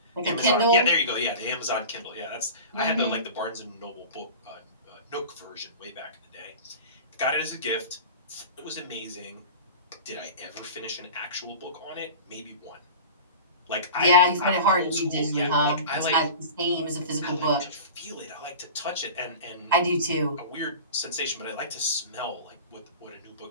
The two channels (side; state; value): both; inverted; correlation -0.35